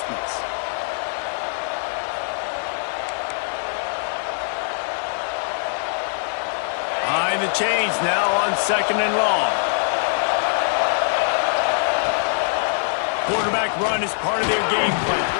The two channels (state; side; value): silent; right; 60 dB below the other